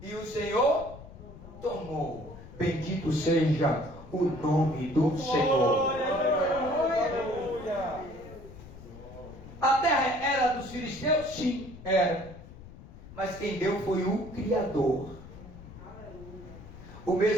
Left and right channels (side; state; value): left; noise; rumble, 16 dB below the sound